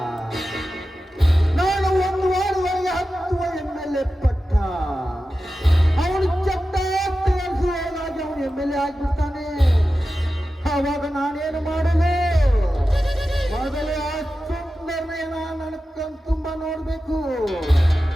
ನಾನು ಒಂದು ವಾರದೊಳಗೆ 10 MLA ಪಟ್ಟ. ಅವನು ಚಟ್ಟ ತಯಾರಿಸುವುದಾಗಿ ಅವನು MLA ಆಗಿಬಿಡ್ತಾನೆ. ಅವಾಗ ನಾನೇನು ಮಾಡಲು? ಮೊದಲೇ ಆ ಸುಂದರನ ನನ್ನ ಕಣ್ ತುಂಬಾ ನೋಡ್ಬೇಕು.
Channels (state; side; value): normal; both; correlation 0.93